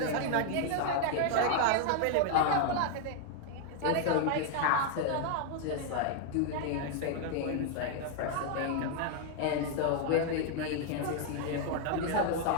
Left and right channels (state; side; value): different; both; correlation 0.00